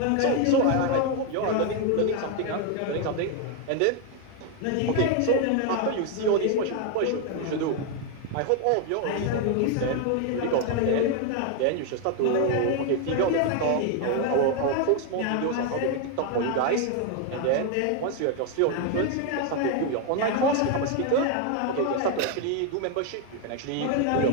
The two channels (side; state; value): both; different; correlation 0.01